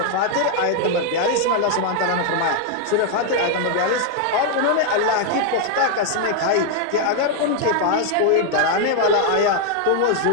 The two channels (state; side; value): different; both; correlation 0.00